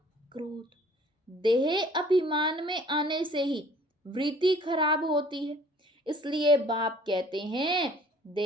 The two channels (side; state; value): both; normal; correlation 0.54